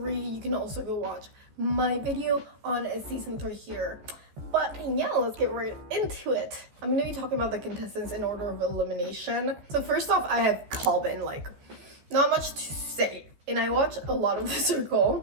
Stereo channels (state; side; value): late; left; 14 ms